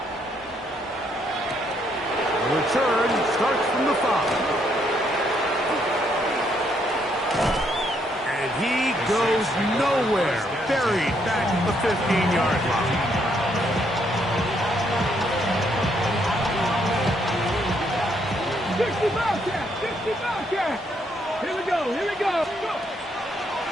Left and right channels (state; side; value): normal; both; correlation 0.72